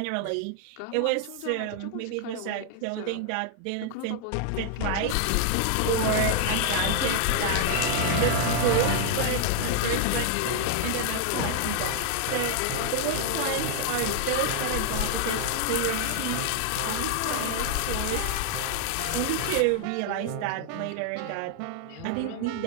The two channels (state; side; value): different; both; correlation 0.00